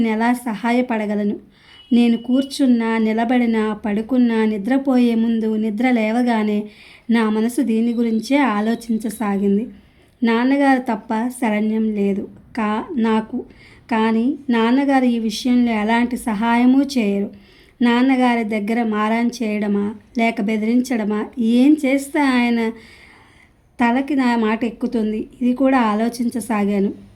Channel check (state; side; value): identical; both; correlation 1.00